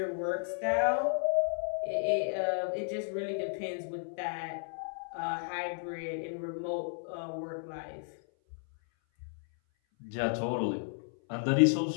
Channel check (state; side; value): silent; right; 56 dB below the other